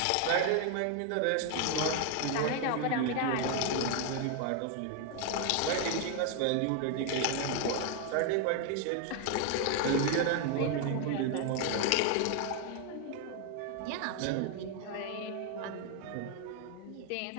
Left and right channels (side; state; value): both; different; correlation 0.01